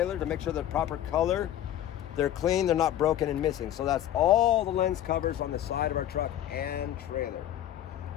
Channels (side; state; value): right; quieter; 11.9 dB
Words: to make sure they're proper color, they're clean, they're not broken and missing. So that's all the lens covers on the side of our truck and trailer.